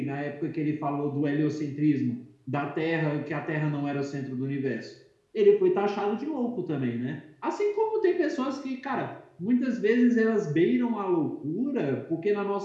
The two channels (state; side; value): identical; both; correlation 1.00